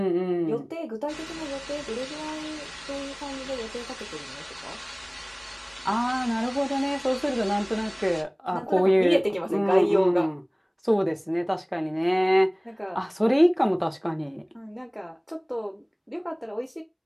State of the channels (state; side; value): identical; both; correlation 1.00